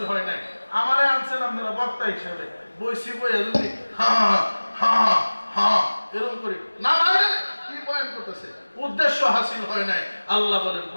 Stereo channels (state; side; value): inverted; both; correlation -1.00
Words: হয় নাই আমারে আনছেন আপনারা বক্তা হিসেবে বইসি বইয়া যদি এরকম করি না কি বয়ান করতেছে উদ্দেশ্য হাসিল হয় নাই আল্লাহ বলেন